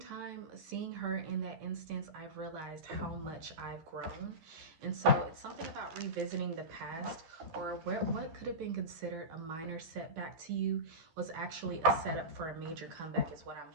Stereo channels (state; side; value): late; left; 12 ms